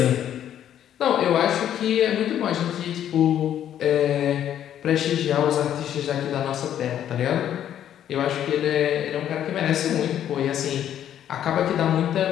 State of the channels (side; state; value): right; quieter; 10.5 dB